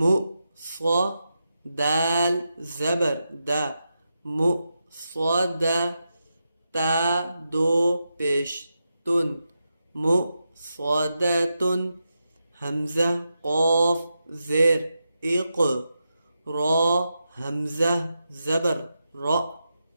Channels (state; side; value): inverted; both; correlation -0.88